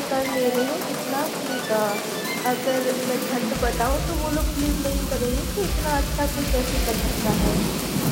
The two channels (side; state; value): both; identical; correlation 1.00